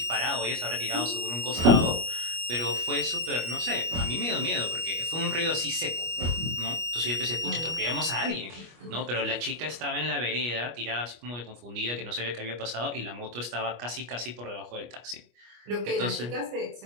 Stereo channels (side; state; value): left; late; 25 ms